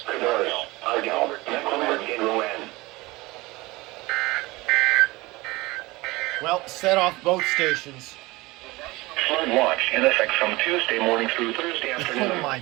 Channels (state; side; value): quieter; left; 21.5 dB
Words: Cabarrus, Ardell, Mecklenburg, and Rowan. Well, set off both stations. Flood watch in effect from Tuesday morning through Thursday afternoon. Oh my